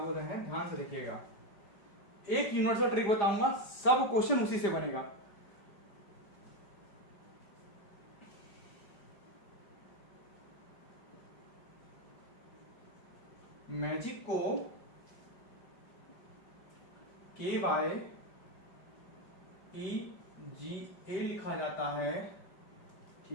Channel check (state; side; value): late; right; 5.2 ms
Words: रहे हैं, ध्यान से देखिएगा। एक यूनिवर्सल ट्रिक बताऊंगा, सब क्वेश्चन उसी से बनेगा। मैजिक को KYEGA लिखा जाता है,